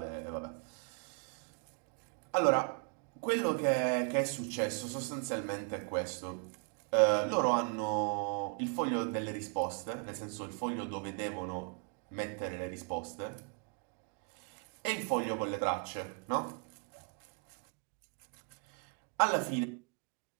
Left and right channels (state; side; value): quieter; left; 39.0 dB